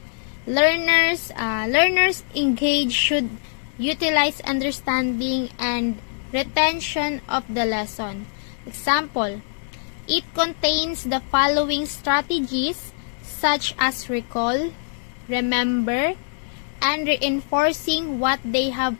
Learners engaged should utilize understanding and retention of the lesson. Example, it contains the following strategies such as recall, remember, and reinforcing what they have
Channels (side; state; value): right; silent; digital silence